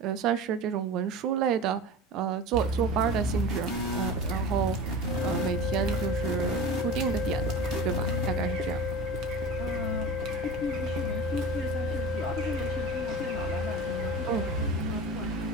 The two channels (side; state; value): both; normal; correlation 0.33